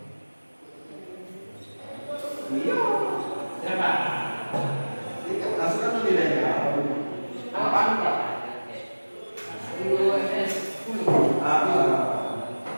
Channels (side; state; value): both; inverted; correlation -1.00